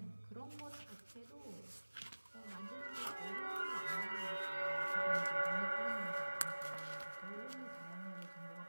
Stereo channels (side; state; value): both; inverted; correlation -1.00